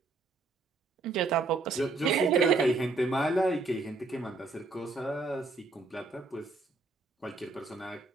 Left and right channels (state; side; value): quieter; left; 3.6 dB